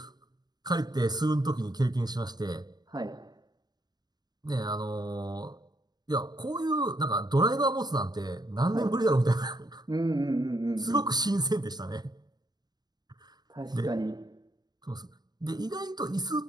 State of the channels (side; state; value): left; late; 0.20 ms